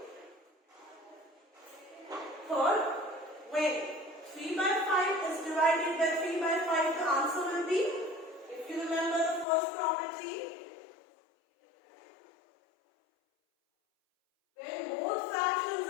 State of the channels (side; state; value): right; drops out; at 9.5 s